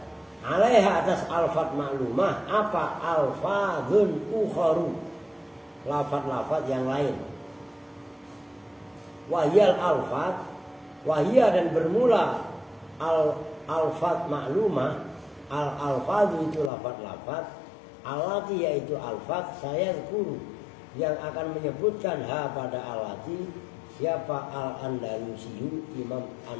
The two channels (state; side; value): drops out; right; at 16.7 s